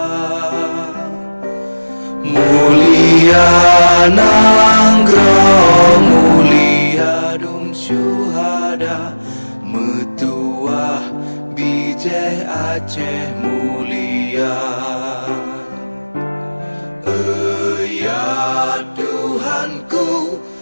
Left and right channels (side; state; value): both; inverted; correlation -1.00